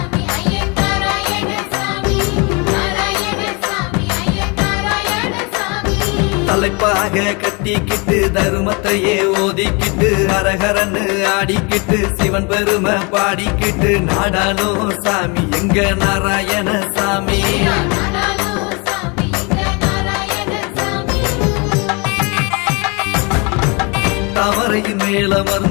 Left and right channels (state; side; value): quieter; right; 30.4 dB